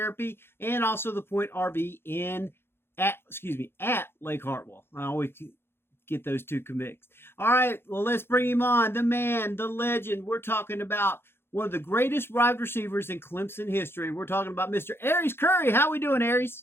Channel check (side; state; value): right; late; 0.11 ms